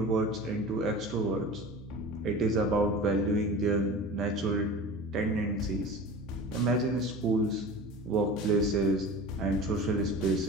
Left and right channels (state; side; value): normal; both; correlation 0.36